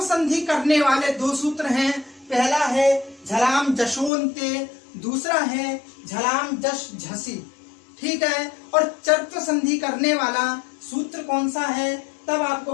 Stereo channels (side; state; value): right; drops out; at 4.1 s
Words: संधि करने वाले दो सूत्र हैं, पहला है झलाम जशोन्ते, दूसरा है झलाम जश झसी। ठीक है, और चर्त्व संधि करने वाला सूत्र कौन सा है? तब आपको